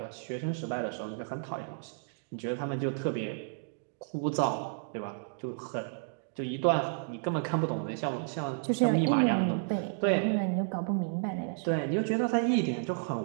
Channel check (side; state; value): left; silent; digital silence